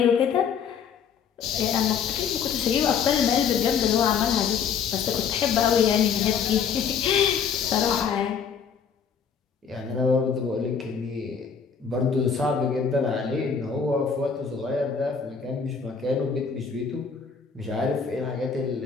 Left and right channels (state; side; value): quieter; right; 6.7 dB